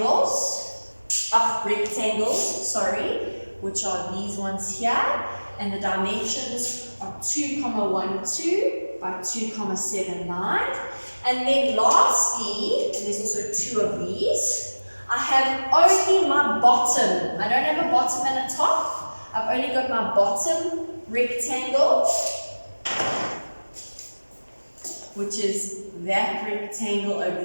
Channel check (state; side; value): inverted; both; correlation -1.00